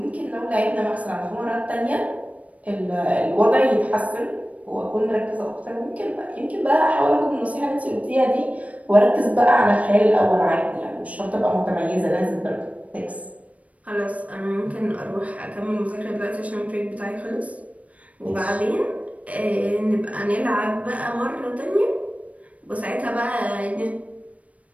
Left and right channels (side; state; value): left; late; 0.067 ms